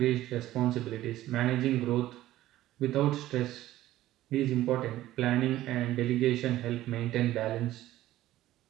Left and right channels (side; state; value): left; quieter; 14.8 dB